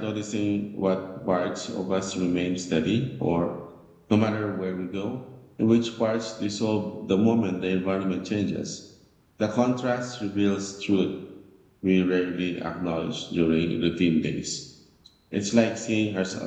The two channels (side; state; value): both; identical; correlation 1.00